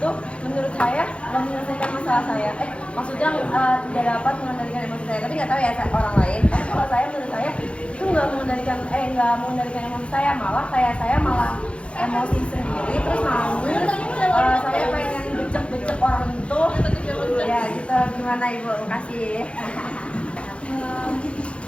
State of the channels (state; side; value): late; right; 0.060 ms